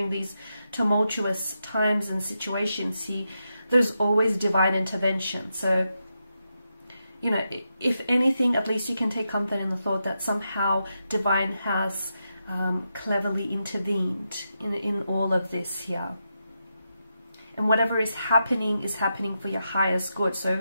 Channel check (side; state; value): both; inverted; correlation -0.86